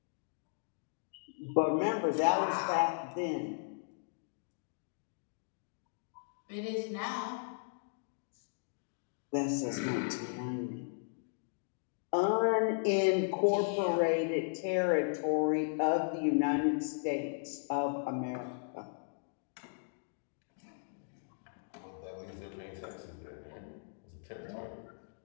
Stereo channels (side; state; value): right; silent; digital silence